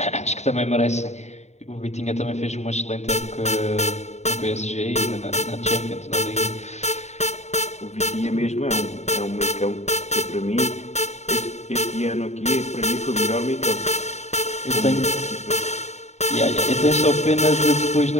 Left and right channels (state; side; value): late; right; 0.32 ms